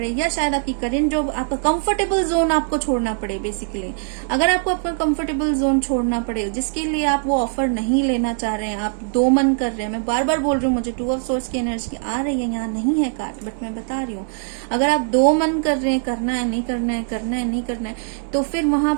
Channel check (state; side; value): silent; left; digital silence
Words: या शायद आपकी करेंट जॉब, आपका कंफर्टेबल जोन आपको छोड़ना पड़े। बेसिकली अगर आपको अपना कंफर्टेबल जोन छोड़ना पड़े जिसके लिए आप वो ऑफर नहीं लेना चाह रहे हैं, आप दो मन कर रहे हैं, मैं बार बार बोल रही हूँ, मुझे 2 ऑफ सोर्स की एनर्जी आ रही है, यहाँ नहीं है कार्ड बट मैं बता रही हूँ। अगर आप दो मन कर रहे हैं, करना है नहीं करना है, करना है नहीं करना है, तो फिर वहां